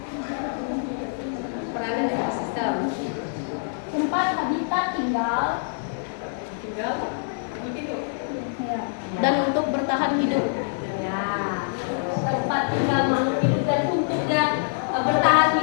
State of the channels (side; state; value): right; silent; digital silence